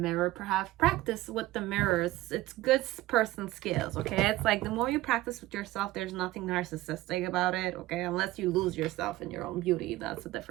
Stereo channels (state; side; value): quieter; left; 17.3 dB